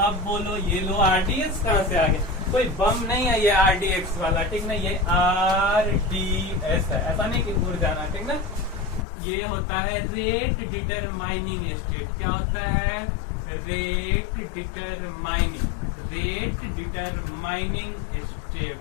बोलो ये लो, RDS कहाँ से आ गया, कोई बम नहीं है ये RDX वाला, ठीक ना, ये RDS है, ऐसा नहीं कि दूर जाना, ठीक ना। ये होता है रेट डिटरमाइनिंग स्टेट। क्या होता है, रेट डिटरमाइनिंग स्टेप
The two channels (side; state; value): right; drops out; at 9.1 s